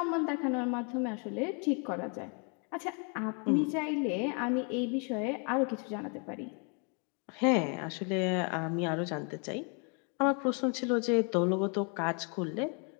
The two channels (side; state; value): right; quieter; 37.5 dB